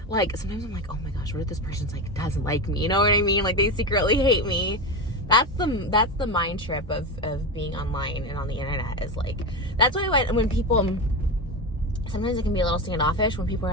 like sometimes I'm like, oh my gosh, what if this person's like doesn't like me, you know what I mean? Like they secretly hate me. That's the mind trip of being online and on the internet, is like, that's why when people, sometimes it can be a little standoffish when people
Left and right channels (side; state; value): both; normal; correlation 0.19